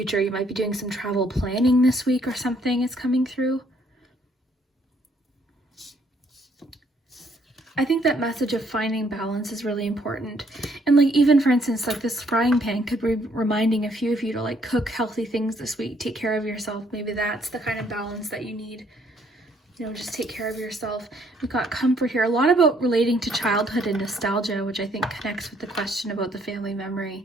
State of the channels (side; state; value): both; normal; correlation 0.67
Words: You might be doing some travel planning this week or something is coming through. I think that message of finding balance is really important. And like, even for instance, like this frying pan could be reminding a few of you to like cook healthy things this week, take care of yourself. Maybe that's the kind of balance that you need. You know, just take care of yourself. We've got comfort here. A lot about relating to childhood and nostalgia, which I think connects with the question about the family